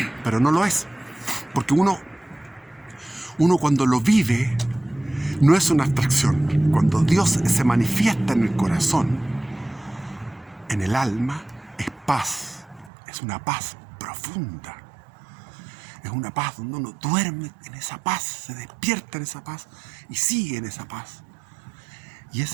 pero no lo es. Porque uno cuando lo vive, no es una abstracción. Cuando Dios se manifiesta en el corazón, en el alma, es paz. Es una paz profunda. Es una paz donde uno duerme en esa paz, se despierta en esa paz y sigue en esa paz. Y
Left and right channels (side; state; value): left; drops out; at 12.9 s